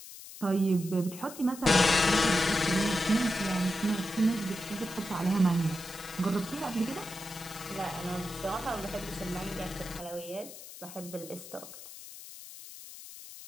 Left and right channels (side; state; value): left; noise; hiss, 15 dB below the sound